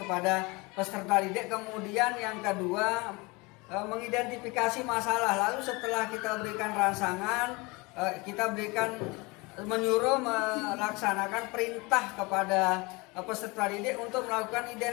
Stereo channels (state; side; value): quieter; right; 25.7 dB